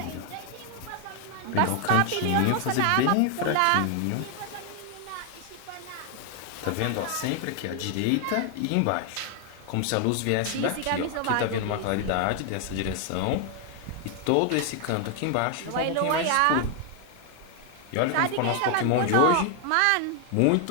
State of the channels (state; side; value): different; both; correlation 0.00